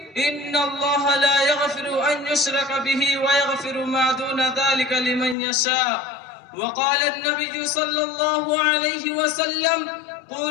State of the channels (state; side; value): drops out; right; at 5.4 s